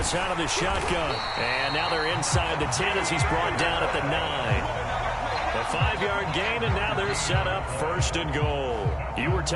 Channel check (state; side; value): identical; both; correlation 1.00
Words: out of the shotgun. And now they're inside the 10 as he's brought down at the 9. A 5-yard gain, and now they're set up 1st and goal. You were